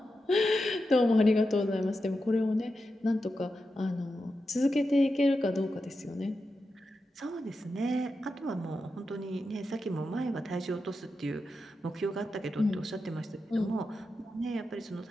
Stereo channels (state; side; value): normal; both; correlation 0.89